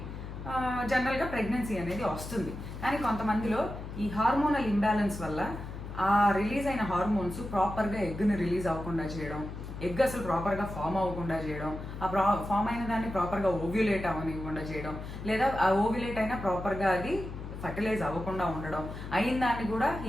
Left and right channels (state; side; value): noise; left; hum, 9 dB below the sound